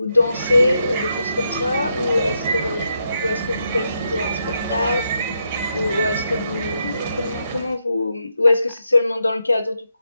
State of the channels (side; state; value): both; inverted; correlation -0.81